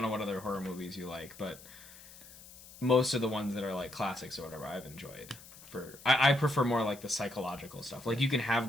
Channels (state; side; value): noise; left; hiss, 19 dB below the sound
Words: know what other horror movies you like, but most of the ones that are like classics or whatever, I've enjoyed. I prefer more like the psychological stuff. Like you can